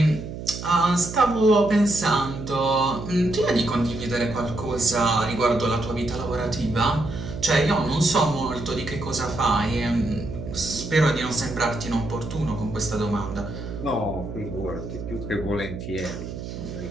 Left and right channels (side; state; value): right; noise; hum, 9 dB below the sound